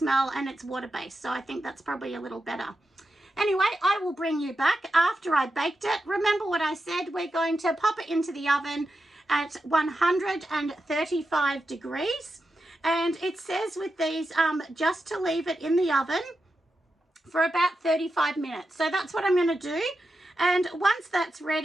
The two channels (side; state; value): both; normal; correlation 0.89